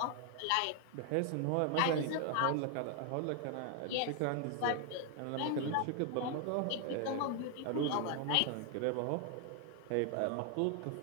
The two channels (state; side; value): different; both; correlation 0.01